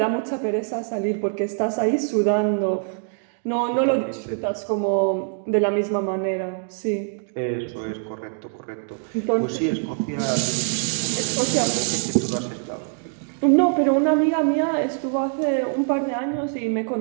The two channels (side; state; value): left; silent; digital silence